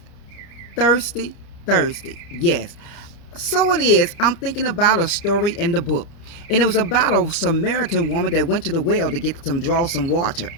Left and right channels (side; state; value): right; late; 30 ms